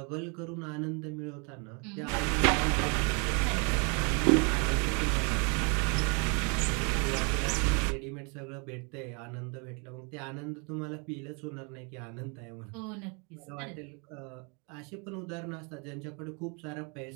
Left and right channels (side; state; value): left; quieter; 34.8 dB